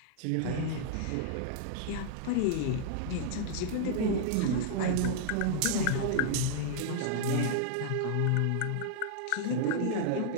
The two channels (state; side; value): different; both; correlation -0.01